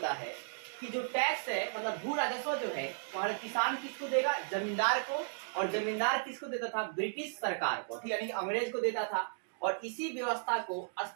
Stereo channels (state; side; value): silent; left; digital silence